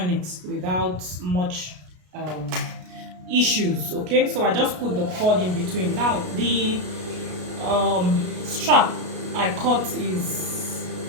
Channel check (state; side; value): late; left; 33 ms